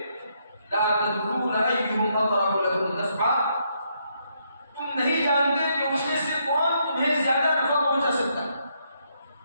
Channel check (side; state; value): both; inverted; correlation -0.75